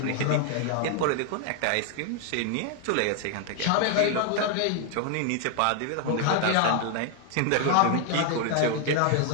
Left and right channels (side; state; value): both; different; correlation 0.00